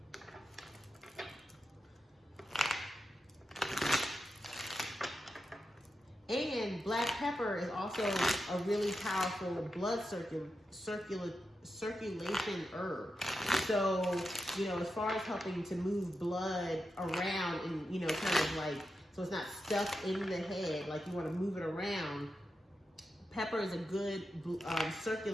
And black pepper is also a really powerful blood circulation herb. So, you know, as far as helping to move blood around and, you know, kind of like, so it's not stuck in the head, like you want to move it around. Pepper is a good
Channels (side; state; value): both; normal; correlation 0.88